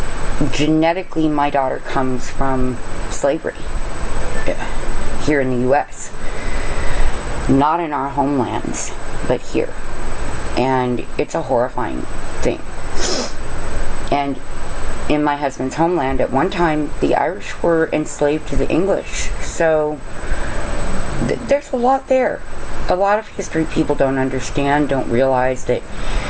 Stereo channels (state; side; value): identical; both; correlation 1.00